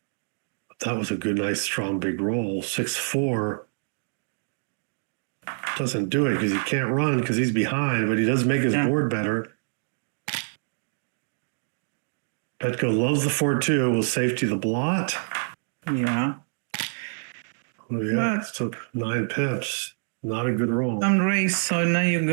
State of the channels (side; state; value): left; silent; digital silence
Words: that was a good, nice, strong, big roll. 6-4 doesn't do it because he can't run because he's behind, but he does make his board better. Petko loves the 4-2. Will safety the blot. Yeah. Oh, yeah, it took 9 pips. Not a good roll. Some race, so now you